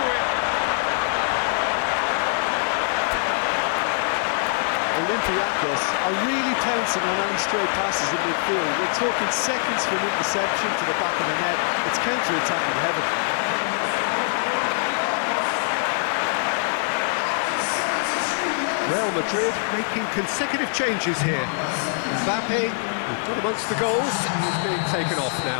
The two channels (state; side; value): silent; right; digital silence